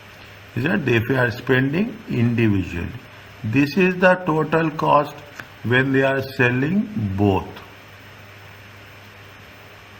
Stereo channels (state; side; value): identical; both; correlation 1.00